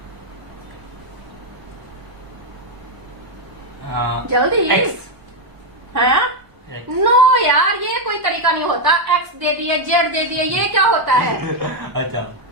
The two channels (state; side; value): late; left; 1.0 ms